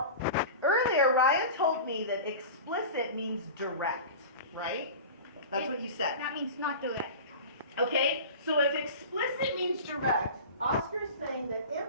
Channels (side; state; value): both; inverted; correlation -0.33